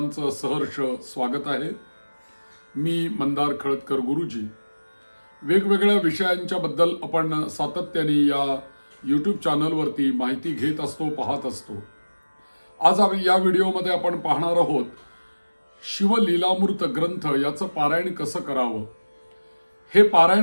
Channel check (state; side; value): inverted; both; correlation -1.00